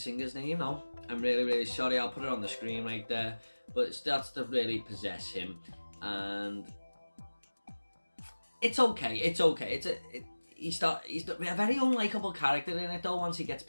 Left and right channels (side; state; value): both; inverted; correlation -1.00